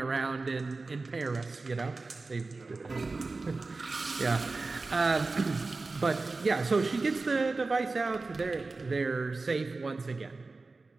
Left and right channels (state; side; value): quieter; left; 3.7 dB